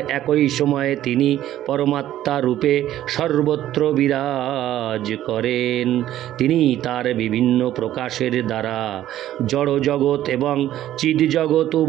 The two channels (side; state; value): left; quieter; 12.9 dB